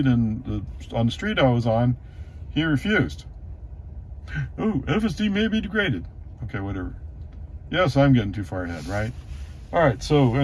and on the street I was on, he refused. Oh, FSD may be degraded. Okay, whatever. Yes, I'm getting too far ahead, right? All right, so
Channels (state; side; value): identical; both; correlation 1.00